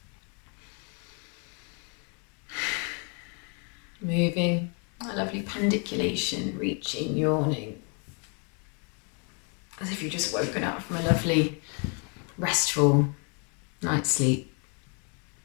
Moving, a lovely pandiculation, reaching, yawning. As if you've just woken up from a lovely, restful night's sleep.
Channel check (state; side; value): quieter; right; 37.5 dB